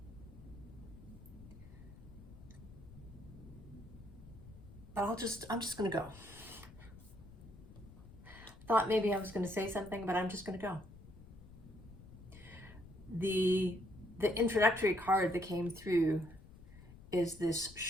But I'm just gonna go. Thought maybe I was gonna say something, but I'm just gonna go. The introductory card that came through is this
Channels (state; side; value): noise; left; rumble, 18 dB below the sound